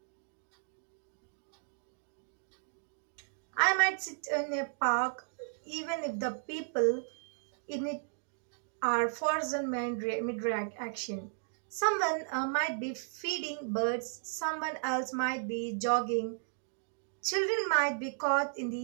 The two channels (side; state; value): left; silent; digital silence